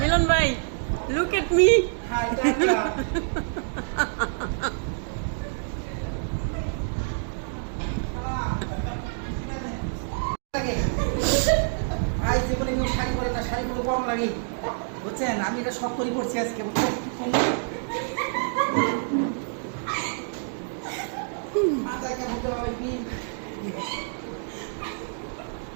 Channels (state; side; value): silent; left; digital silence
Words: ভাই look at me hi Tata ভাই জীবনে কেউ শাড়ি পরে না, শাড়ি পরে কম লাগে বুঝছেন। আমি এটা শখ করে পড়ছি আজকে বুঝছেন। মাথায় কেমন তো হবে কি